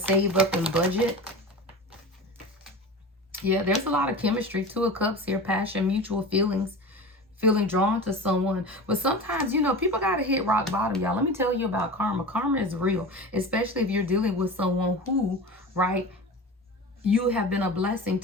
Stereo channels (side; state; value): both; normal; correlation 0.31